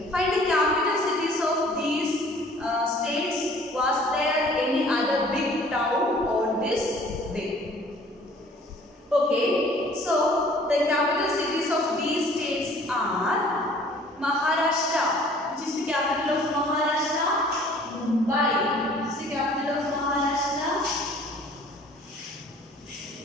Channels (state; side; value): normal; both; correlation 0.53